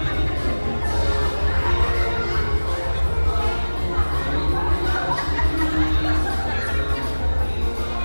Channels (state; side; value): inverted; both; correlation -1.00